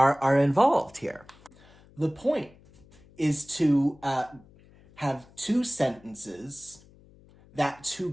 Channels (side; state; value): left; noise; hum, 26 dB below the sound